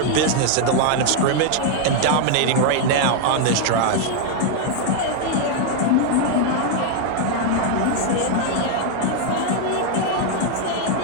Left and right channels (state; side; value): different; both; correlation 0.00